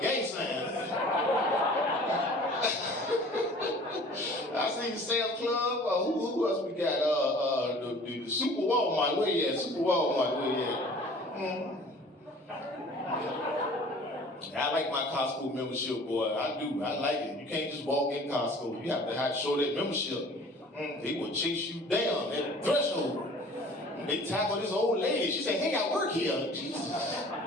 sign. I see Sam's Club. Who else we got? The Super Walmart. Where you at? Super Walmart. Where you at? I like my Costco membership, boy. I do. I like it. You can't just walk in Costco. You have to show that membership. They would chase you down at the threshold. They tackled this old lady. She said, hey, I work here. Jesus.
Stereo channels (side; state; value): both; normal; correlation 0.48